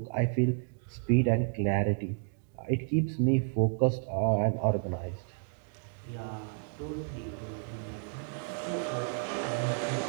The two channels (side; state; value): left; silent; 57 dB below the other